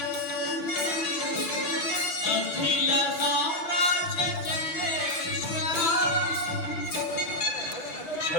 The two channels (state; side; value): late; right; 7.2 ms